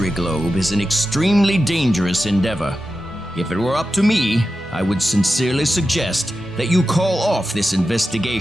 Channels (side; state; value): both; normal; correlation 0.91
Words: globe is an extremely dangerous endeavor. If it were up to me, I would sincerely suggest that you call off this